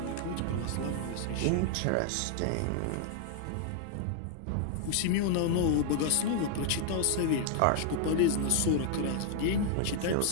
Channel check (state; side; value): different; both; correlation 0.00